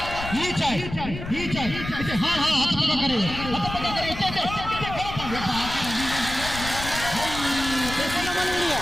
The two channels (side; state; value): left; noise; rumble, 9 dB below the sound